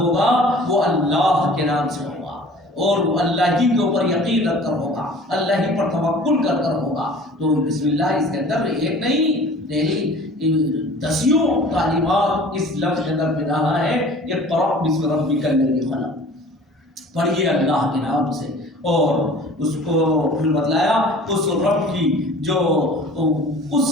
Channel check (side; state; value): both; normal; correlation 0.46